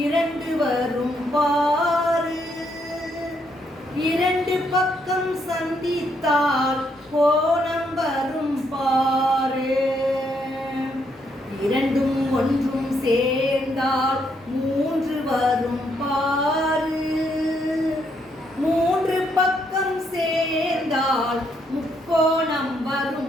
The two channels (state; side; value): normal; both; correlation 0.74